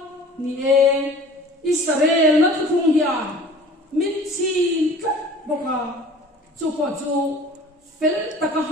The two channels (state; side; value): normal; both; correlation 0.46